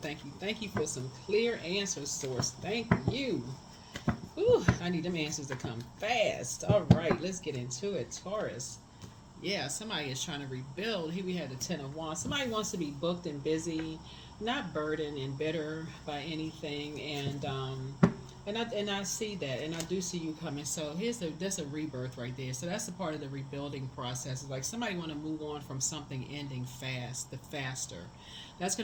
thank you, thank you for some clear answers, Source. Thank you. Ooh, I need them answers to come fast. All right, let's get into it. Taurus. Yeah, somebody is trying to rebuild. Here we had the Ten of Wands. Somebody wants to be booked and busy, not burdened and bitter by anything. And I see that, and I do see you coming. So that's a rebirth right there. So that's a part of the rebuilding process. It's like somebody want to move on from something ending fast, the faster. That's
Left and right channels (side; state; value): both; identical; correlation 1.00